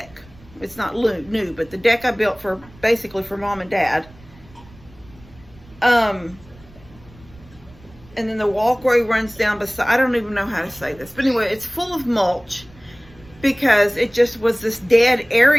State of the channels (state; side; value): noise; right; rumble, 24 dB below the sound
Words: it's not new, but the deck I built for basically for Mom and Dad, and then the walkway runs down beside, I don't even know how to say this, but anyway, it's full of mulch because it just was this dead